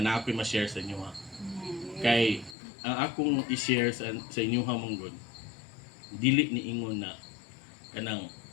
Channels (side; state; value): right; drops out; at 2.6 s